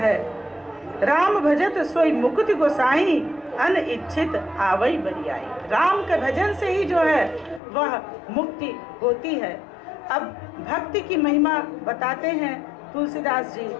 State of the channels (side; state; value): right; drops out; at 7.6 s